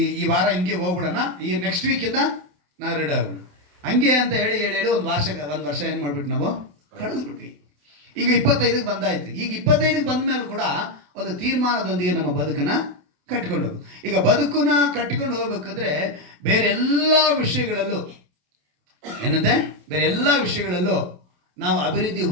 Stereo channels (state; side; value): late; left; 28 ms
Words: ಈ ವಾರ ಹಿಂಗೆ ಹೋಗ್ಬಿಡೋಣ, ಈ ನೆಕ್ಸ್ಟ್ ವೀಕಿಂದ ನಾವು ರೆಡಿ ಆಗ್ಬಿಡೋಣ, ಹಂಗೆ ಅಂತ ಹೇಳಿ ಒಂದು ವರ್ಷ ಏನು ಮಾಡಿಬಿಟ್ಟು ನಾವು ಕಳಿಸ್ಬಿಟ್ವಿ. ಈಗ 25ಕ್ಕೆ ಬಂದಾಯ್ತು. ಈಗ 25ಕ್ಕೆ ಬಂದ ಮೇಲೆ ಕೂಡ ಒಂದು ತೀರ್ಮಾನದೊಂದಿಗೆ ನಮ್ಮ ಬದುಕನ್ನು ಕಟ್ಕೊಂಡು ಹೋಗ್ಬೇಕು. ಈಗ ಬದುಕನ್ನು ಕಟ್ಕೊಂಡು ಹೋಗ್ಬೇಕಂದ್ರೆ ಬೇರೆ ಎಲ್ಲ ವಿಷಯಗಳಲ್ಲೂ ಏನಂತೆ? ಬೇರೆ ಎಲ್ಲ ವಿಷಯಗಳಲ್ಲೂ ನಾವು ಅಭಿವೃದ್ಧಿ